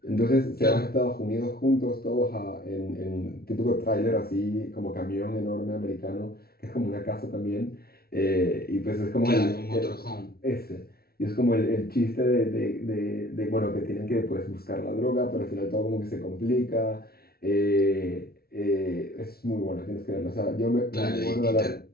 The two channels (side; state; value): right; late; 0.44 ms